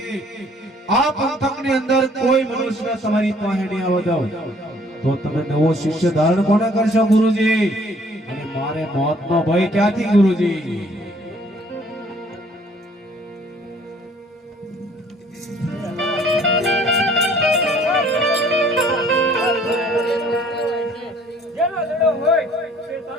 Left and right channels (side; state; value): both; normal; correlation 0.58